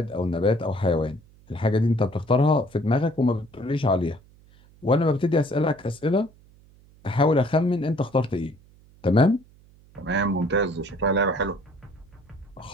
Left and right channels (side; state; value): right; noise; hum, 27 dB below the sound